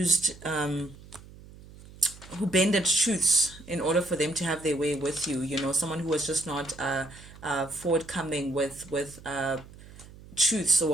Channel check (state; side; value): noise; right; hum, 19 dB below the sound